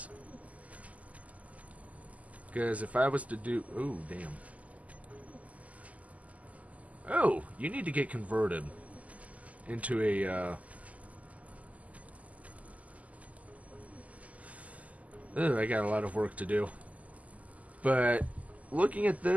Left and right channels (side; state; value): left; late; 0.073 ms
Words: Because if I was to do... Oh, damn. Oh, you need to get converted into a... I got a lot of work to do. But looking at